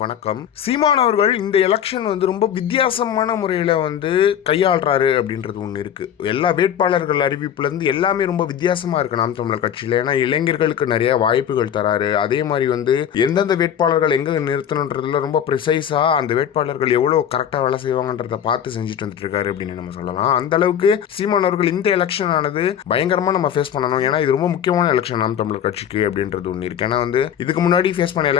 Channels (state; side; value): quieter; right; 9.3 dB